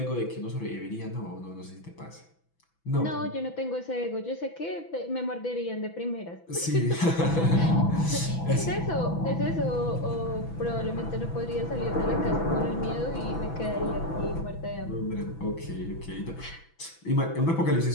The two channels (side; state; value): right; late; 6.0 ms